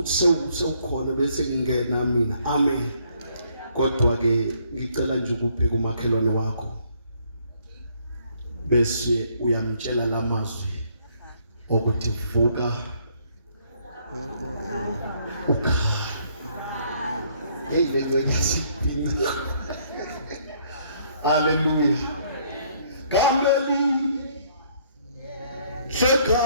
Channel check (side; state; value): both; inverted; correlation -0.66